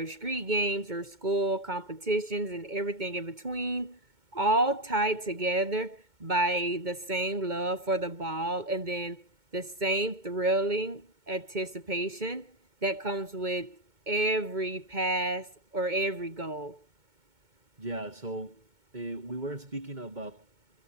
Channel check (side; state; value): left; late; 2.2 ms